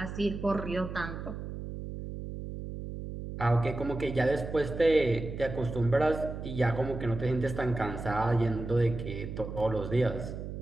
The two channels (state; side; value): noise; right; hum, 8 dB below the sound